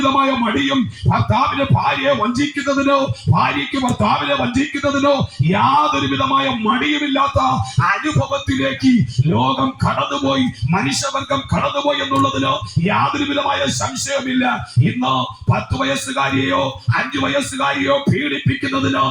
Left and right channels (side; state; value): both; identical; correlation 1.00